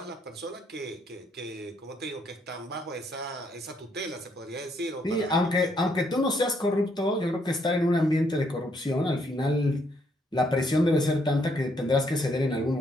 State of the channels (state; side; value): normal; both; correlation 0.72